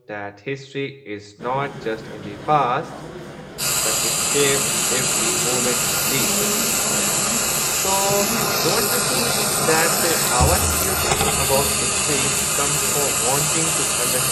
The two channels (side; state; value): both; identical; correlation 1.00